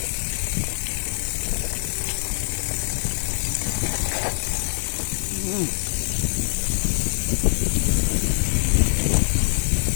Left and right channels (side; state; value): right; silent; 63 dB below the other